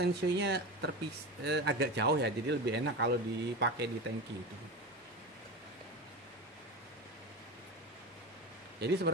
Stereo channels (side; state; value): both; normal; correlation 0.25